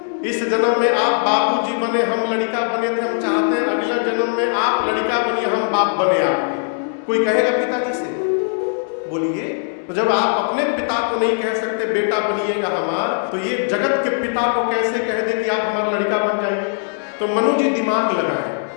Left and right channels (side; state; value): right; silent; 66 dB below the other